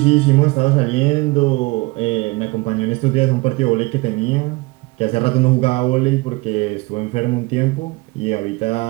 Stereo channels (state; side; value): quieter; left; 24.1 dB